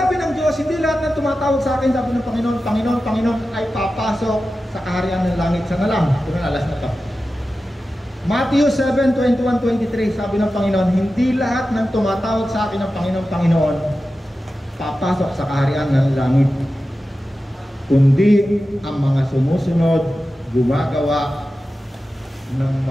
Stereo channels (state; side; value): normal; both; correlation 0.93